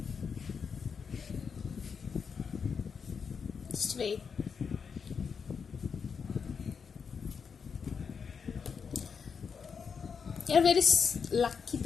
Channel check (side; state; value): right; quieter; 6.1 dB